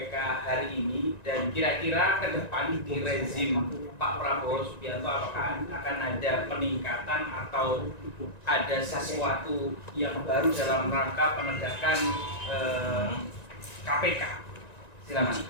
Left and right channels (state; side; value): late; right; 1.9 ms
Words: hari ini, dan kira-kira ke depan di rezim Pak Prabowo Subianto apakah akan ada peningkatan atau ada sesuatu yang baru dalam rangka penegakan KPK. Silakan